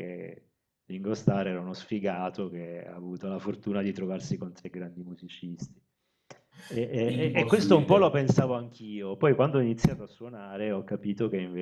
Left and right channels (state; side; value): identical; both; correlation 1.00